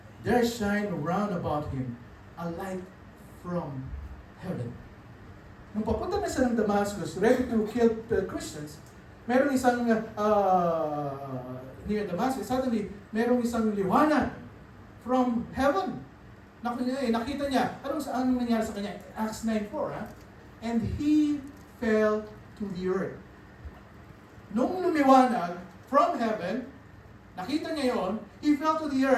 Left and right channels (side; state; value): both; identical; correlation 1.00